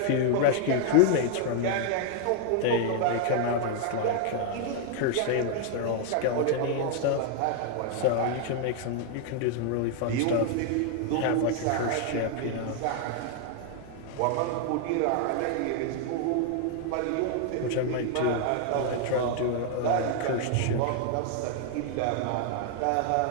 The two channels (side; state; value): both; different; correlation 0.00